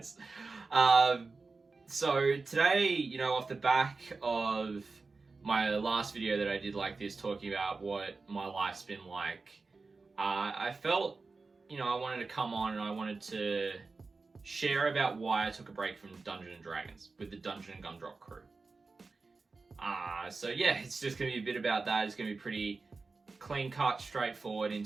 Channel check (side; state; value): left; quieter; 4.0 dB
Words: So today, off the back of my last video that I did like this, talking about what my life's been like, I felt, I wanted to come on and I wanted to share about why I took a break from Dungeons & Dragons with the Dungeons Gumdrops crew. So yeah, it's just going to be a bit about that. It's going to be pretty clean cut, straightforward in